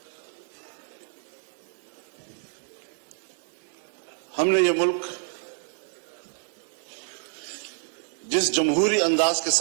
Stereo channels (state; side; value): silent; left; 59 dB below the other